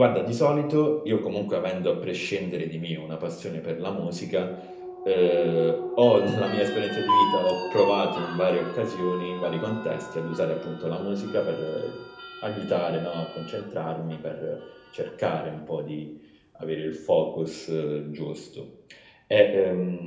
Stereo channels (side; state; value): both; identical; correlation 1.00